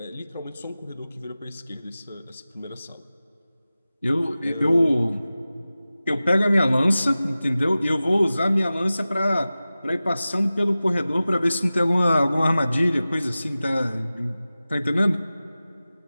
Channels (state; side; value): inverted; both; correlation -0.96